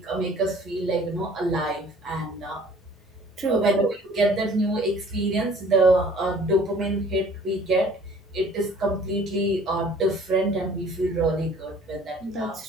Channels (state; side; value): normal; both; correlation 0.52